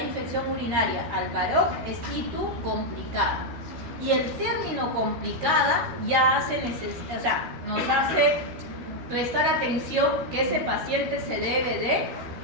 infección urinaria al varón, es ITU complicada. Y el término complicada ya nos hace prestar atención que ese paciente se debe de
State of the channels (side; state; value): left; late; 13 ms